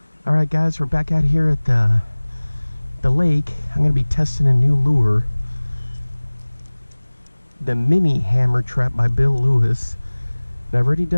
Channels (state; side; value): inverted; both; correlation -1.00